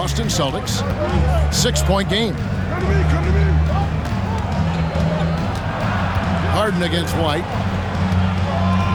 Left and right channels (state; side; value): identical; both; correlation 1.00